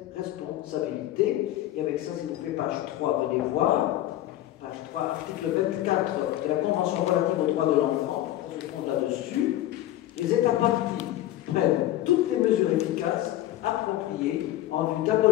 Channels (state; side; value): quieter; right; 14.0 dB